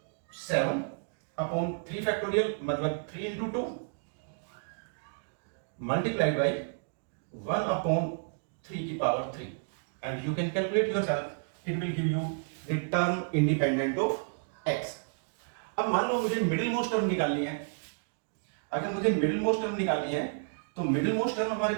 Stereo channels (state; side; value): silent; left; digital silence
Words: 7 upon 3 factorial मतलब 3 इंटू 2 मल्टीप्लाइड बाई 1/3 की power 3, and you can calculate yourself, it will give you the term independent of x। अब मान लो मुझे middle most term निकालनी है। अगर मुझे मिडिल मोस्ट टर्म निकालनी है तो मिडिल मोस्ट टर्म हमारे